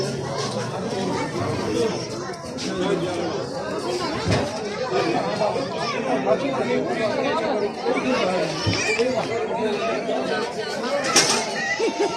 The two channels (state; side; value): identical; both; correlation 1.00